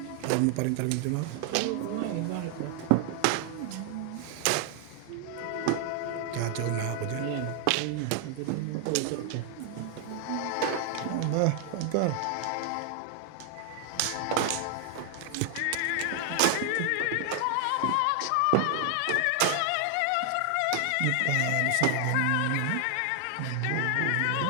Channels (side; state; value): both; different; correlation 0.00